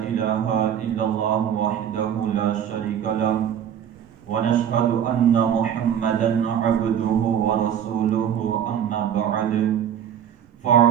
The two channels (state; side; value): quieter; left; 9.3 dB